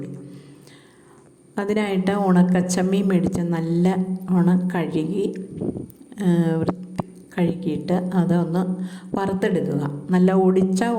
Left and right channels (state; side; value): identical; both; correlation 1.00